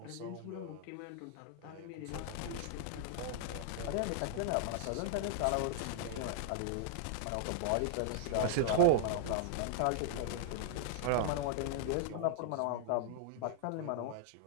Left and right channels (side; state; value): both; different; correlation -0.01